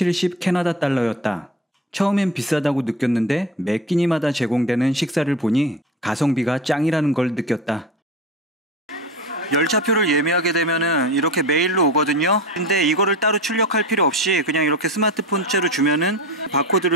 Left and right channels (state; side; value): normal; both; correlation 0.31